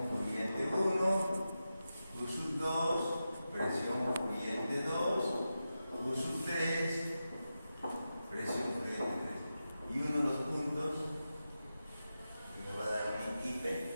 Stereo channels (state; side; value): inverted; both; correlation -0.91